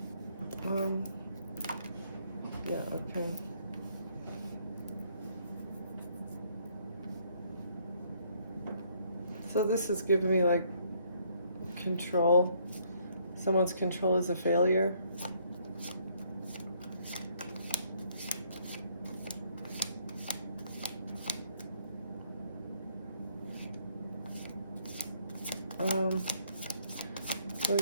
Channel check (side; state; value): both; inverted; correlation -0.66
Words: Yeah, okay. So this is giving me like control. Someone's control is a failure. Let